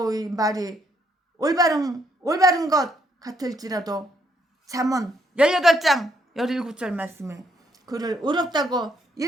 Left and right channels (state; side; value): normal; both; correlation 0.72